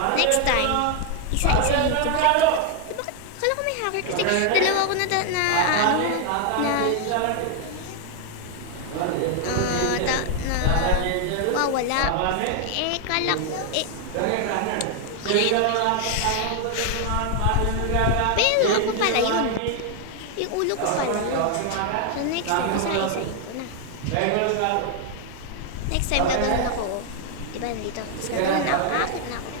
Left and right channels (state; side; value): different; both; correlation 0.00